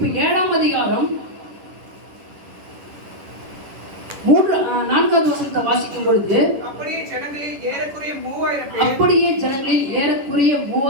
7ஆம் அதிகாரம் 4வது வசனத்தை வாசிக்கும் பொழுது, அப்படியே ஜனங்களில் ஏறக்குறைய 3000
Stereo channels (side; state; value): left; late; 10 ms